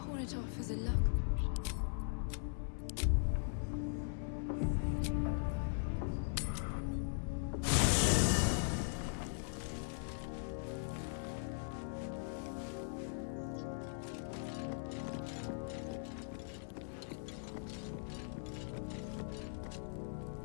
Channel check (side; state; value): right; silent; digital silence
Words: it off as a luck.